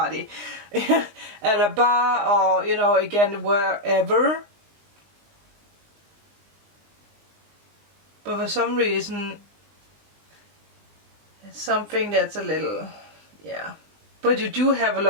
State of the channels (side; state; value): left; late; 19 ms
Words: at a bar, or, you know, again, wherever. But for some reason, it's something that's a little, yeah. But you do have a